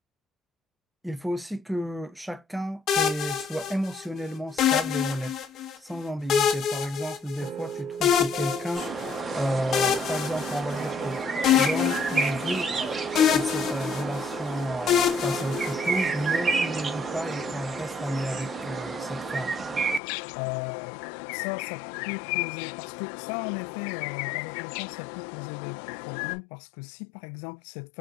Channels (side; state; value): right; drops out; at 20.0 s